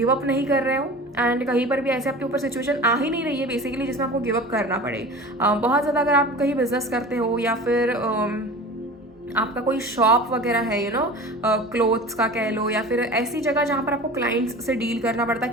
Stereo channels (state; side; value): normal; both; correlation 0.36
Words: अप नहीं कर रहे हो, एंड कहीं पर भी ऐसे आपके ऊपर सिचुएशन आ ही नहीं रही है बेसिकली जिसमें आपको गिव अप करना पड़े. बहुत ज़्यादा अगर आप कहीं बिजनेस करते हो या फिर आपका कोई शॉप वगैरह है, यू नो, क्लोथ्स का कह लो, या फिर ऐसी जगह जहाँ पर आपको क्लाइंट्स से डील करना पड़ता है,